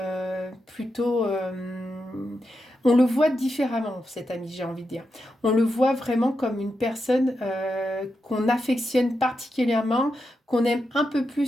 on le voit différemment, cet ami, j'ai envie de dire. On le voit vraiment comme une personne qu'on affectionne particulièrement, qu'on aime un peu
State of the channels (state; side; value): normal; both; correlation 0.87